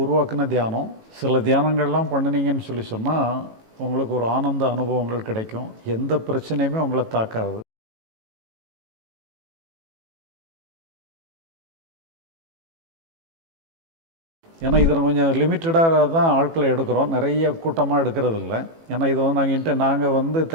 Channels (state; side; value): late; left; 18 ms